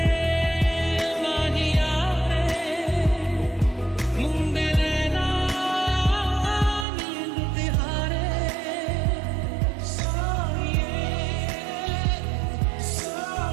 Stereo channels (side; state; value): left; drops out; at 6.9 s